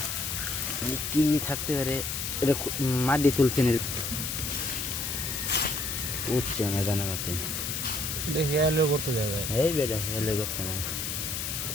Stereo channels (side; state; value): left; noise; hiss, 3 dB below the sound